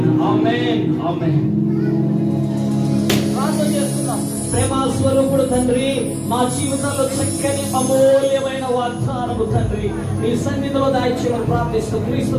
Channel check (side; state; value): both; identical; correlation 1.00